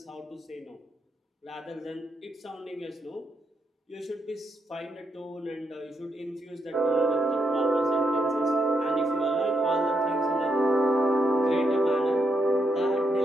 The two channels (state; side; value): normal; both; correlation 0.80